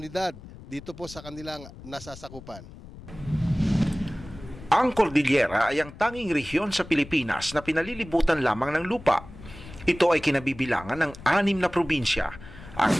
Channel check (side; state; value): left; noise; rumble, 16 dB below the sound